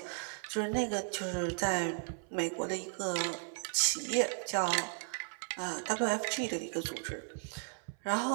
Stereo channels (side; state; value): left; silent; 54 dB below the other